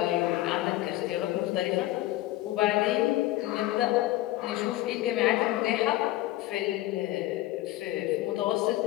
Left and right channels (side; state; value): right; quieter; 16.4 dB